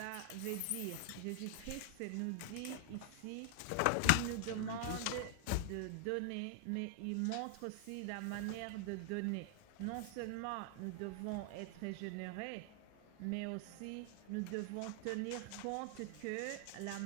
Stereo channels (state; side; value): different; both; correlation 0.00